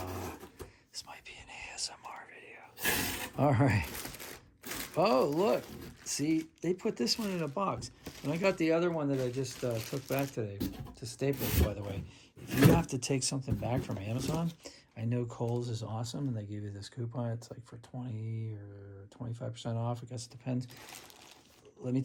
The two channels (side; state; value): both; identical; correlation 1.00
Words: This might be an ASMR video. All right. Oh, look. See, they put this one in a box. When I got the other one that I just took back today, to Staples, by the way, if you have to take something back from Amazon, I know Kohl's is awesome, and they give you this coupon. It's like for 20 or 25% off. I guess it depends. Let me